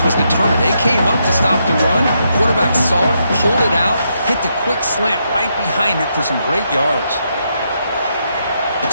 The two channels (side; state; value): both; inverted; correlation -0.79